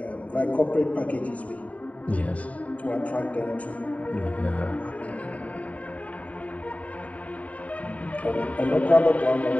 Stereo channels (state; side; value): late; right; 0.068 ms